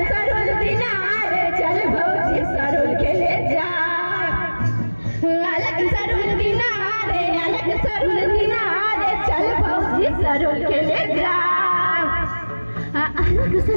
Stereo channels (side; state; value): both; inverted; correlation -1.00